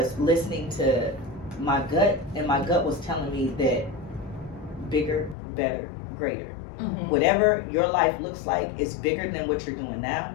listening to my gut, and my gut was telling me that bigger, better, greater. Whatever your life looks like is bigger than what you're doing now.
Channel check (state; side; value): drops out; right; at 5.4 s